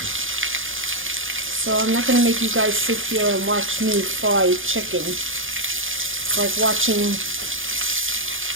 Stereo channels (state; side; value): late; left; 0.58 ms